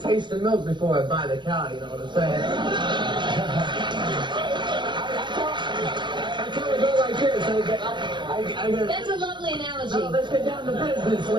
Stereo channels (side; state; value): left; late; 0.22 ms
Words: the milk before I buy the cow. You know what I'm saying? That's a lovely analogy. Oh, let's get down to business,